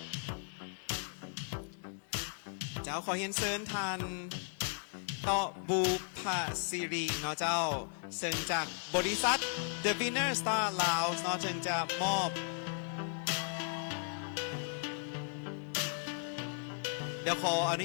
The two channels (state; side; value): silent; right; 54 dB below the other